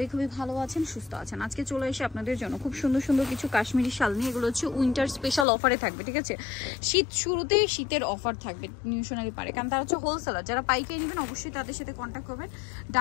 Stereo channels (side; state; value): right; drops out; at 5.5 s